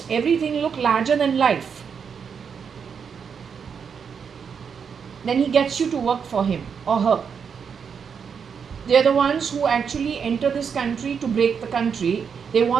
everything look larger than life, then he gets you to work for him or her. They are the ones who actually enter this country to break the country. They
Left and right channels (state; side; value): quieter; left; 6.6 dB